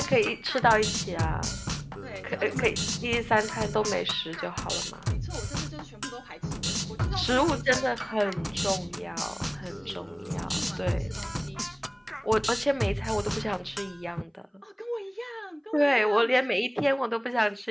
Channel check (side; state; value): both; identical; correlation 1.00